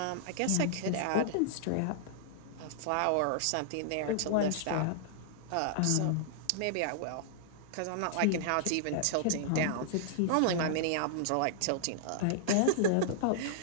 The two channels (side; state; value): both; different; correlation -0.01